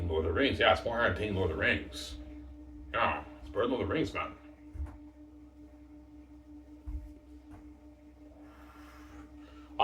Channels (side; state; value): both; identical; correlation 1.00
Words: than Lord of the Rings. Yeah, it's more entertaining than Lord of the Rings. Yeah, it's better than Lord of the Rings, man.